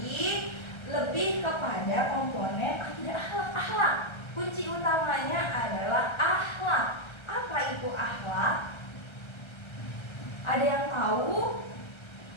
lebih kepada komponen akidah akhlak. Kunci utamanya adalah akhlak. Apa itu tahu?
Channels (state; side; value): late; right; 1.3 ms